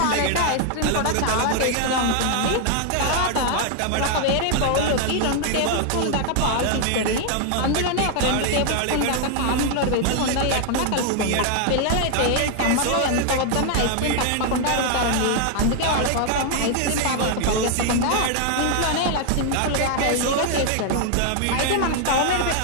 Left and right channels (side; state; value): both; different; correlation 0.00